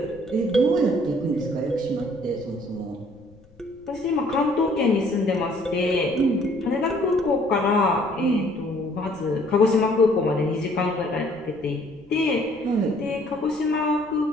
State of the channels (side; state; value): left; noise; rumble, 28 dB below the sound